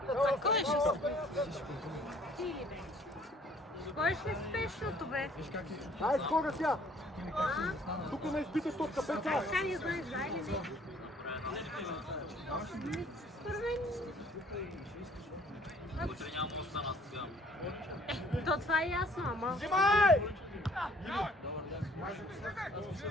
Кой ще Кой ще спешното, бе? Ай, скоро тя! Тук не изпитай топка, Петя! Така не знаеш, да или не? Според мен... То това е ясно, ама... Взимай!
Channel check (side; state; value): both; normal; correlation 0.57